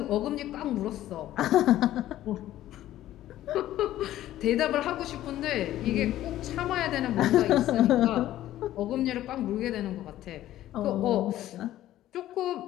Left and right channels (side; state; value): right; quieter; 13.7 dB